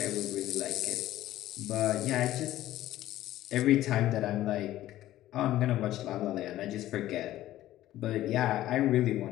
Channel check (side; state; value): right; quieter; 14.4 dB